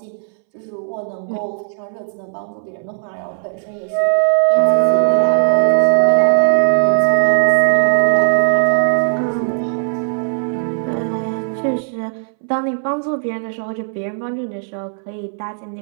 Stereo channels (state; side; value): silent; left; 65 dB below the other